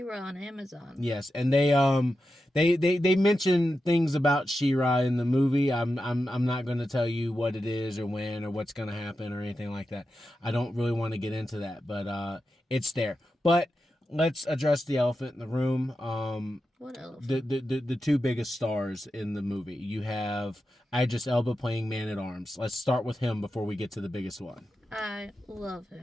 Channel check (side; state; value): both; normal; correlation 0.90